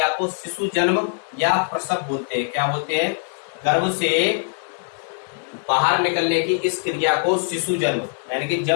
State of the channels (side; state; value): right; silent; 57 dB below the other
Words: को शिशु जन्म या प्रसव बोलते हैं। क्या बोलते हैं? गर्भ से बाहर निकलने की इस क्रिया को शिशु जन्म, यानी कि